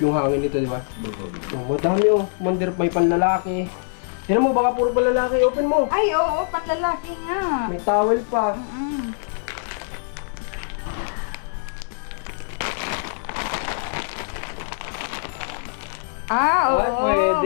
hangin nito, di ba? Oh, madami oh. Commander, may panlalaki. Tignan mo, baka puro panlalaki. Open mo. Ay, oo, panlalaki nga. May towel pa. Oo, Ay,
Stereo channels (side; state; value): right; silent; digital silence